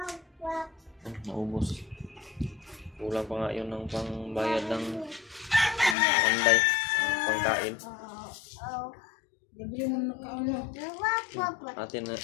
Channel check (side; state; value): right; drops out; at 6.0 s